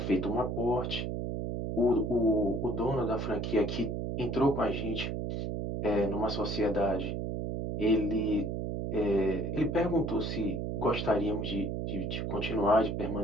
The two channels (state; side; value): noise; right; hum, 2 dB below the sound